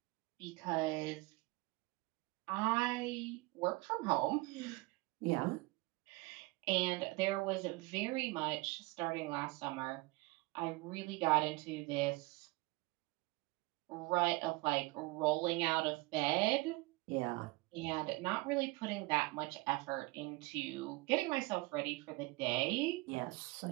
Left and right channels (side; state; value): left; quieter; 23.8 dB